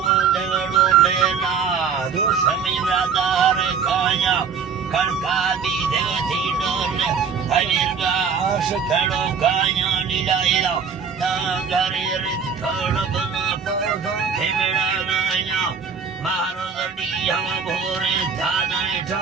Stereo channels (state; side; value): quieter; left; 6.3 dB